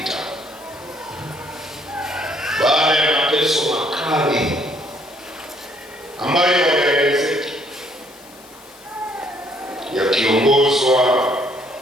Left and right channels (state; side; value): noise; left; hiss, 23 dB below the sound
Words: Baada ya mateso makali ambayo yaelezeki yakiongozwa